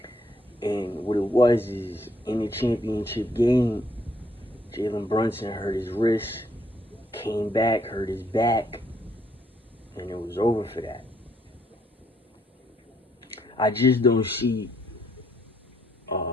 And what it was is, in the championship game, Jalen Brunson hurt his wrist, came back, hurt his back, and it was over for that. I just don't see,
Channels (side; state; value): both; normal; correlation 0.71